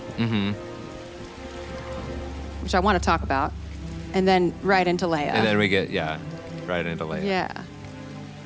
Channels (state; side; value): identical; both; correlation 1.00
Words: Which I want to talk about. And then right into Leia. And then we get, right into Leia. Yeah.